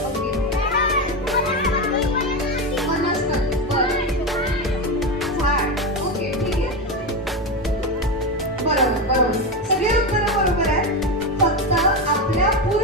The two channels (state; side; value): normal; both; correlation 0.15